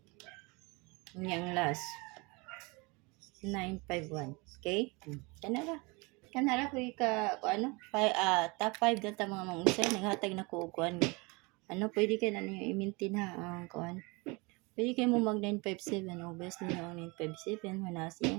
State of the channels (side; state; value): left; quieter; 27.2 dB